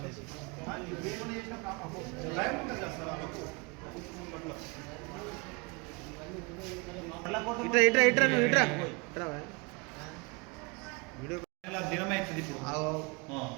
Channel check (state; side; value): quieter; left; 29.8 dB